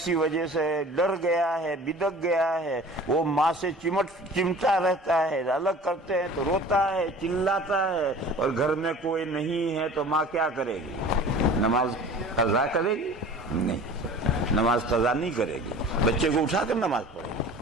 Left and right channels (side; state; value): both; normal; correlation 0.43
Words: وجہ سے ڈر گیا ہے، بدک گیا ہے، وہ ماں سے چمٹا رہتا ہے، الگ کرتے ہیں تو روتا ہے، چلاتا ہے، اور گھر میں کوئی نہیں ہے تو ماں کیا کرے گی؟ نماز قضا کرے گی؟ نہیں، نماز قضا نہیں کرے گی، بچے کو اٹھا کر نماز پڑھے گی۔